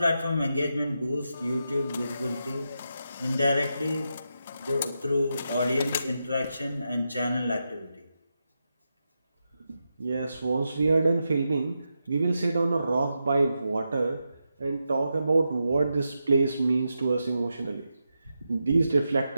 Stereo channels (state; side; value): inverted; both; correlation -0.87